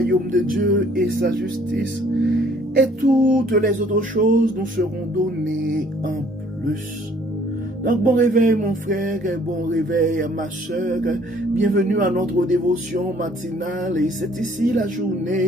de Dieu et sa justice, et toutes les autres choses nous seront données en plus. Donc bon réveil mon frère, et bon réveil ma sœur, bienvenue à notre dévotion matinale, et c'est ici la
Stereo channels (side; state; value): both; normal; correlation 0.59